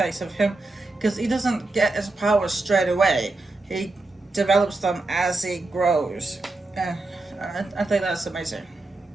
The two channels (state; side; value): quieter; left; 3.1 dB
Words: of him, because he doesn't get his powers straight away. He develops them as he grows. Uh, I think that's amazing.